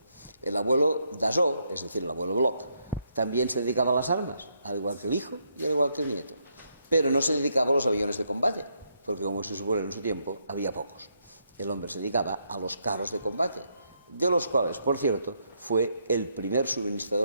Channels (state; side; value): inverted; both; correlation -0.77